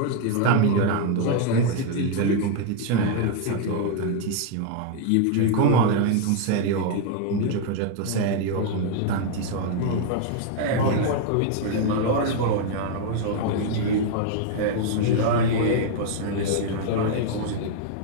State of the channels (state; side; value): different; both; correlation 0.00